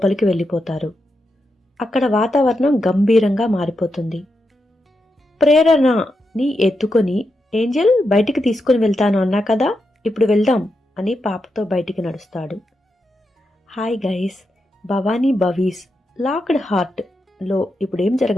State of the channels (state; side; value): normal; both; correlation 0.86